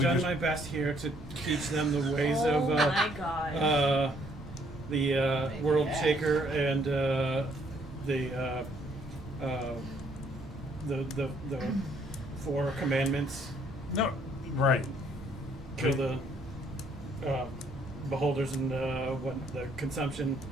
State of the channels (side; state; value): both; normal; correlation 0.66